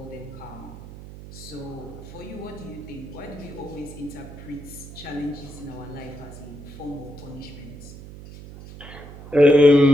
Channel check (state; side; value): noise; right; hum, 14 dB below the sound